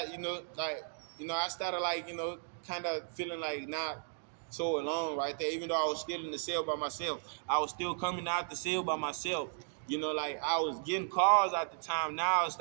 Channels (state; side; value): silent; left; digital silence